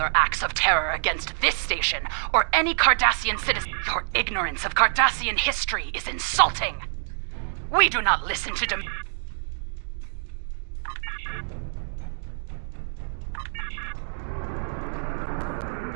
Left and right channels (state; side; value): silent; left; digital silence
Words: acts of terror against this station or any Cardassian citizen, your ignorance of Cardassian history is insulting. We do not listen to